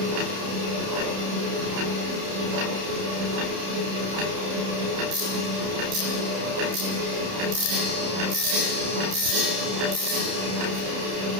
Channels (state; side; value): late; left; 30 ms